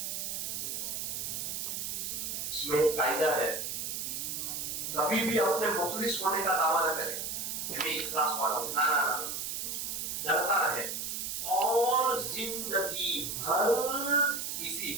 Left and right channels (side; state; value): right; noise; hiss, 3 dB below the sound